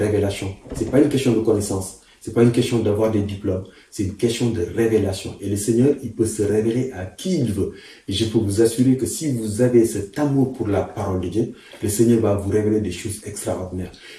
Ce n'est pas une question de connaissance. Ce n'est pas une question d'avoir des diplômes, c'est une question de révélation. Et le Seigneur, il peut se révéler à qui il veut. Et je peux vous assurer que si vous avez cet amour pour la parole de Dieu, le Seigneur va vous révéler des choses extraordinaires.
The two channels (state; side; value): identical; both; correlation 1.00